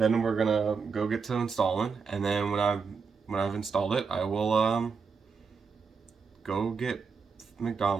we're gonna go get to installing, and then when I've installed it, I will go get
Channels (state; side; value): quieter; left; 5.4 dB